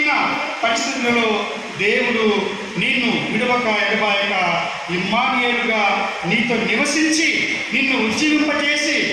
పరిస్థితులలో దేవుడు నిన్ను విడవక ఎడబాయక ఇమ్మానుయేలుగా నీతో నివసించి నిన్ను ఉజ్జీవింపజేసి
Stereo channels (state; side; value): identical; both; correlation 1.00